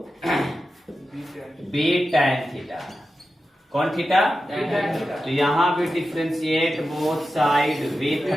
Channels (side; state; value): both; normal; correlation 0.92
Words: b tan theta. कौन थीटा, तो यहां भी differentiate both side with